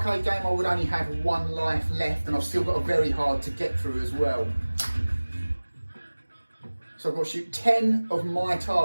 game, I would only have 1 life left, and I've still got a very hard to get through as well. So I've got to shoot 10 of my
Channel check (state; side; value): inverted; both; correlation -1.00